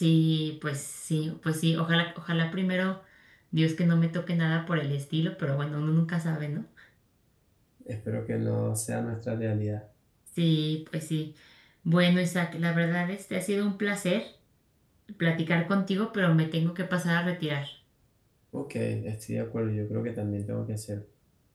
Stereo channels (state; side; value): identical; both; correlation 1.00